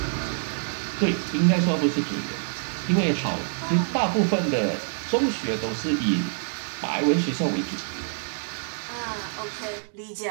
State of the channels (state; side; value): silent; left; digital silence